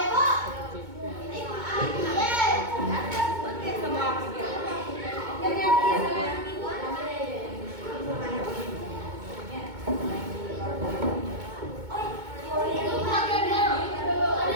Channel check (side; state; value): left; late; 2.2 ms